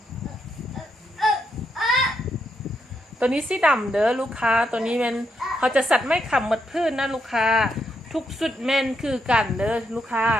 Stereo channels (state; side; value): normal; both; correlation 0.80